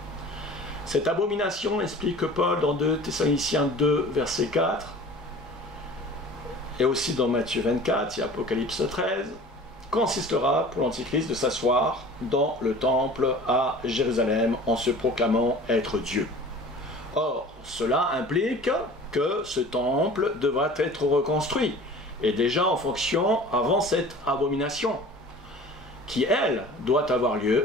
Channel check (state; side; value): normal; both; correlation 0.43